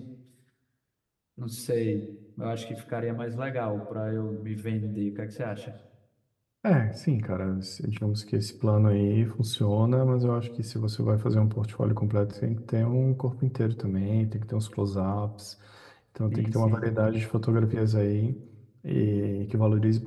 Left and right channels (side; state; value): both; identical; correlation 1.00